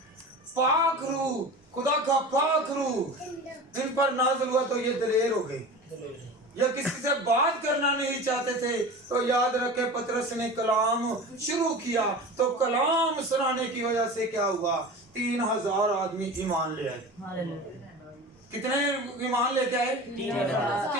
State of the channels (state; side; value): normal; both; correlation 0.33